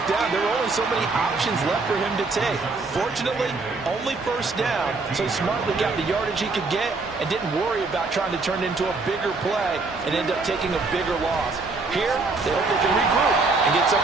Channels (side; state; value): left; quieter; 3.8 dB